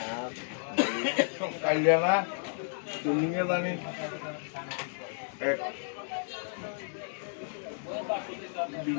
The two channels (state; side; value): silent; right; digital silence